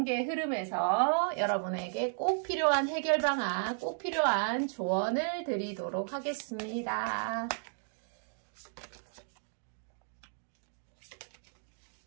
흐름에서 여러분에게 꼭 필요한 해결 방안, 꼭 필요한 조언을 드리도록 하겠습니다.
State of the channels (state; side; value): silent; left; digital silence